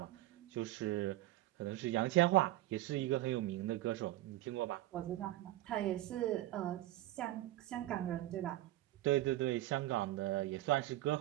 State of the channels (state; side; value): quieter; left; 15.7 dB